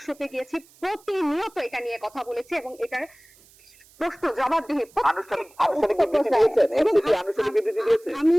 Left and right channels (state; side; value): noise; right; hiss, 28 dB below the sound